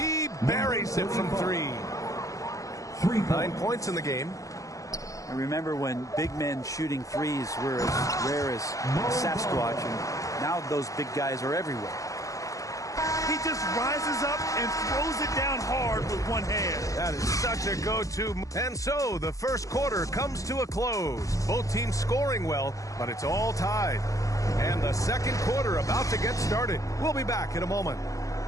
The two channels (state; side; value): late; right; 0.16 ms